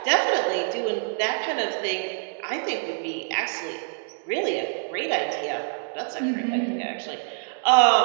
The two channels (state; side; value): silent; left; digital silence